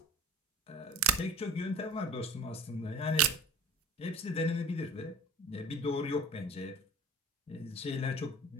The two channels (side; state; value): both; normal; correlation 0.40